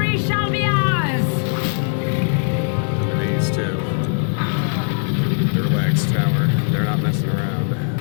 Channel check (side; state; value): right; silent; 61 dB below the other